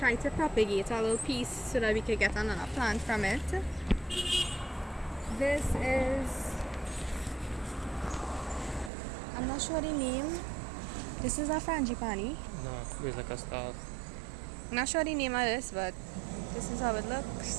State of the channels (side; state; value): left; drops out; at 8.9 s